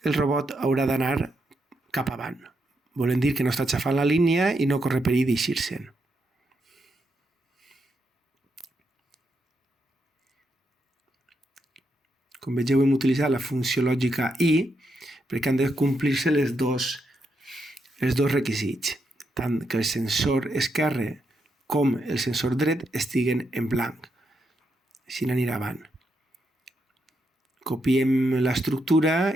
el robot haurà d'anar cap avant. Volen dir que no està xafant la línia i no corre perill d'eixir-se'n. Com vegeu, hem utilitzat la funció lògica i perquè han de complir-se els dos requisits, tant que el sensor esquerre com el sensor dret estiguen en blanc. Així n'anirà avant. Copiem l'estructura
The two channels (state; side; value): normal; both; correlation 0.82